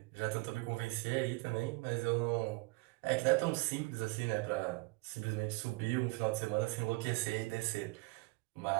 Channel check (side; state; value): left; quieter; 25.0 dB